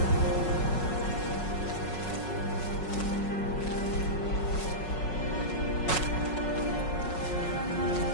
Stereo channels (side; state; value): right; late; 5.4 ms